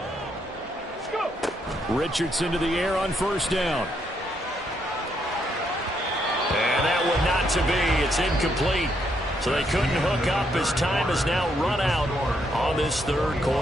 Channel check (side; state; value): both; normal; correlation 0.75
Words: Let's go. Richardson to the air on first down. And that one not to be. It's incomplete. So they couldn't hook up as time has now run out on this third